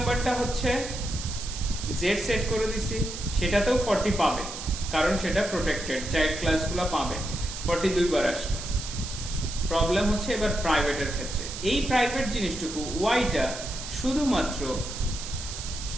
হচ্ছে জেড সেট করে দিছি, সেটাতেও 40 পাবে, কারণ সেটা প্রোটেক্টেড, চাইল্ড ক্লাসগুলো পাবে। 42 বার আসবে। প্রবলেম হচ্ছে এবার প্রাইভেটের ক্ষেত্রে। এই প্রাইভেট জিনিসটুকু ওয়াইটা শুধুমাত্র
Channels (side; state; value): right; noise; hiss, 9 dB below the sound